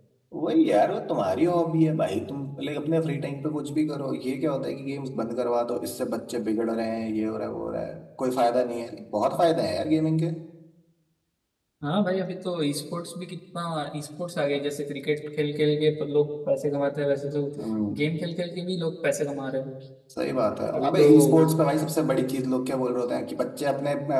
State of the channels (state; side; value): identical; both; correlation 1.00